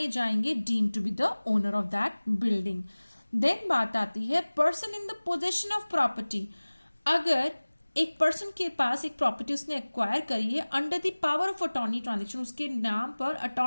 जाएंगे deem to be the owner of that building. Then बात आती है person in the possession of property. अगर एक पर्सन के पास एक प्रॉपर्टी उसने एक्वायर करी है under the power of attorney transaction, उसके नाम पर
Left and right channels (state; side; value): inverted; both; correlation -1.00